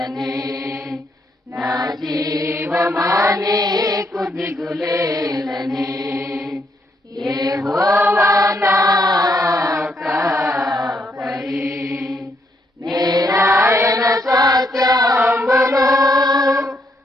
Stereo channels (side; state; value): both; normal; correlation 0.75